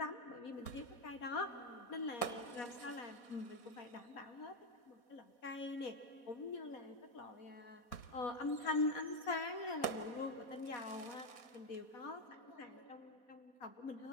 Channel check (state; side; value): late; right; 4.2 ms